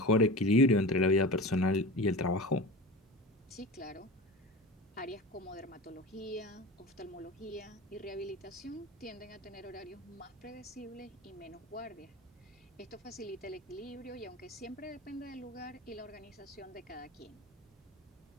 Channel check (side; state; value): both; normal; correlation 0.31